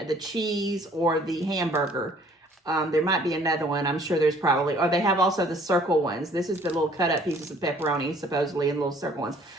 the cheese, or the hamburger? There might be another one. I'm sure there's probably, or they have also the circle ones. This is the little cut up pieces of pepperoni, supposedly, and little circle ones.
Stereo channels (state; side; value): normal; both; correlation 0.57